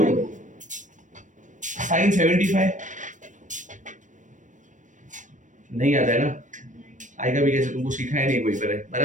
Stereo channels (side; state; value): left; late; 0.37 ms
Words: sin 75? नहीं आता है ना? आएगा भी कैसे? तुमको सिखाया नहीं कोई पर,